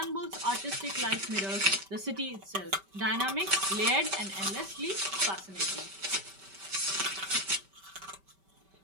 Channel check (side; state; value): left; late; 5.2 ms